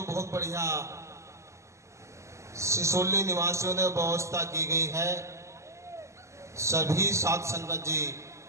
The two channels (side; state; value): left; late; 0.14 ms